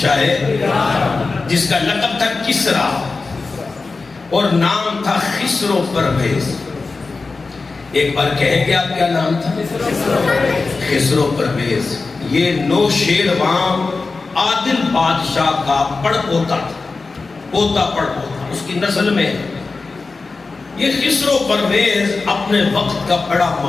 ایران، جس کا لقب تھا کسرا اور نام تھا خسرو پرویز۔ ایک بار کہیں گے آپ کیا نام تھا؟ خسرو پرویز۔ یہ نوشیروان عادل بادشاہ کا پڑ پوتا تھا، پوتا پڑ پوتا، اس کی نسل میں۔ یہ خسرو پرویز اپنے وقت کا بڑا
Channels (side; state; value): right; quieter; 4.0 dB